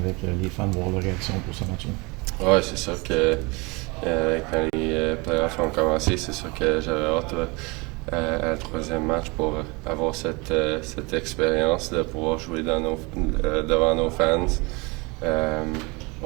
avec les fans, voir leur réaction pour ce match. Ouais, c'est sûr que quand les playoffs ont commencé, c'est sûr que j'avais hâte à le troisième match pour avoir cette expérience de pouvoir jouer devant nos fans.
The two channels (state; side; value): quieter; left; 27.0 dB